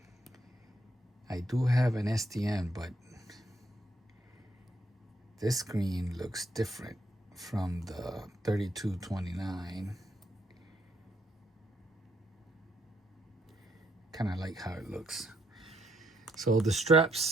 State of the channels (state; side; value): normal; both; correlation 0.74